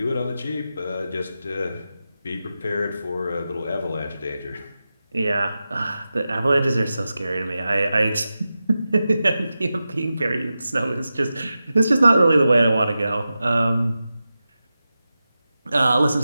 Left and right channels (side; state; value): both; inverted; correlation -0.92